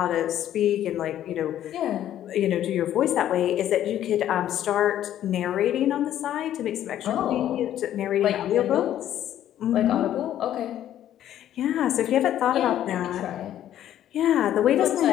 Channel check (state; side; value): quieter; right; 11.6 dB